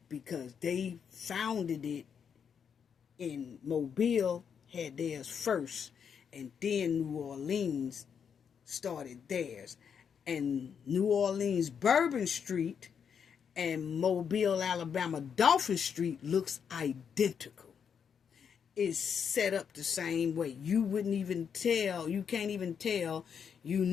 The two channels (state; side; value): quieter; right; 7.2 dB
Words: because they founded it in Mobile, had theirs first, and then New Orleans started theirs. And New Orleans Bourbon Street and Mobile, Alabama Dolphin Street looks identical. It's set up the same way. You wouldn't even tell, you can't even tell you